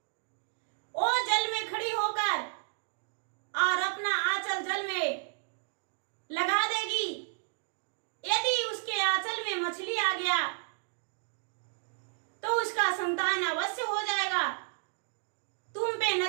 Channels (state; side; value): silent; left; digital silence